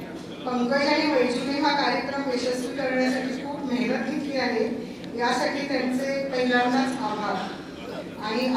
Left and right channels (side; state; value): both; identical; correlation 1.00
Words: पंकज आणि वैजूने हा कार्यक्रम यशस्वी करण्यासाठी खूप मेहनत घेतली आहे, यासाठी त्यांचे पहिल्यांदाच आभार आणि